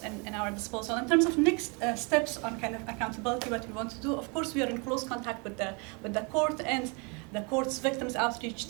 in our disposal. In terms of next steps on kind of accountability, what we want to do, of course we are in close contact with the court, and the court's victims outreach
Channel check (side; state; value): left; quieter; 32.2 dB